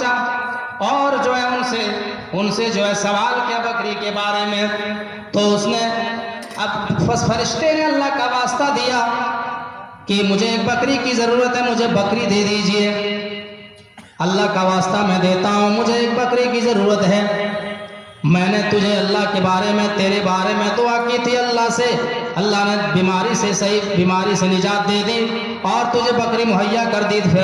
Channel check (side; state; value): both; identical; correlation 1.00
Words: اور جو ہے ان سے جو ہے سوال کیا بکری کے بارے میں، تو اس نے اب فرشتے نے اللہ کا واسطہ دیا کہ مجھے ایک بکری کی ضرورت ہے، مجھے بکری دے دیجئے، اللہ کا واسطہ میں دیتا ہوں، مجھے ایک بکری کی ضرورت ہے، میں نے تجھے اللہ کے بارے میں تیرے بارے میں دعا کی تھی اللہ سے، اللہ نے بیماری سے صحیح بیماری سے نجات دے دی اور تجھے بکری مہیا کر دی، پھر